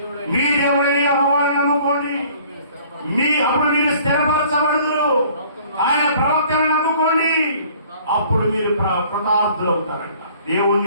మీ దేవుడైన యెహోవాను నమ్ముకోండి, అప్పుడు మీరు స్థిరపరచబడుదురు. ఆయన ప్రవక్తను నమ్ముకోండి, అప్పుడు మీరు కృతార్థులు అవుతారంట.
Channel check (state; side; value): inverted; both; correlation -0.54